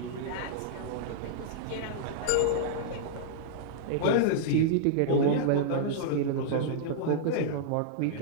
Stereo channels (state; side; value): different; both; correlation -0.02